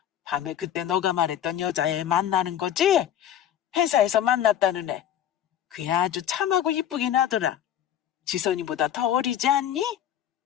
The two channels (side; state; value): right; quieter; 10.5 dB